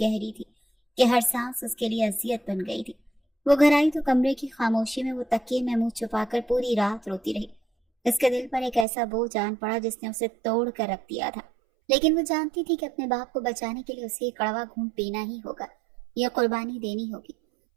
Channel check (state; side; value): drops out; left; at 8.8 s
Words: थी कि हर सांस उसके लिए अजियत बन गई थी। वो घर आई तो कमरे की खामोशी में वो तकिए में मुंह छुपाकर पूरी रात रोती रही। उसके दिल पर एक ऐसा बोझ आन पड़ा जिसने उसे तोड़ कर रख दिया था। लेकिन वो जानती थी कि अपने बाप को बचाने के लिए उसे कड़वा घूंट पीना ही होगा, यह कुर्बानी देनी होगी।